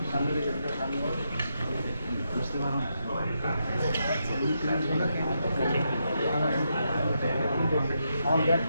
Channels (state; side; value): inverted; both; correlation -0.82